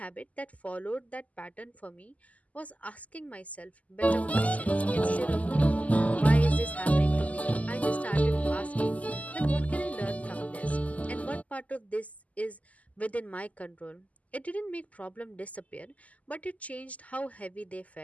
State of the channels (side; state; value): right; late; 0.073 ms